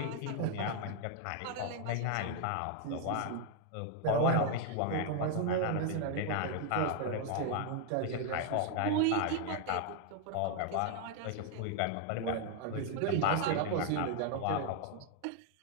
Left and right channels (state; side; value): different; both; correlation 0.00